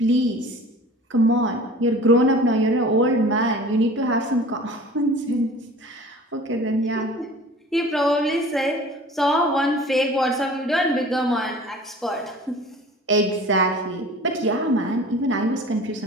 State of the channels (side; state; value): both; normal; correlation 0.43